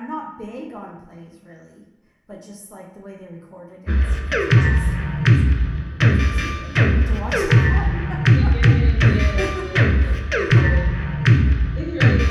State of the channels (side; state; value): both; identical; correlation 1.00